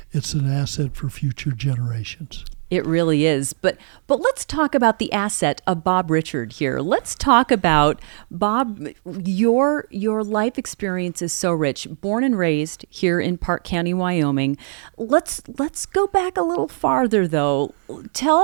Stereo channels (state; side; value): silent; left; digital silence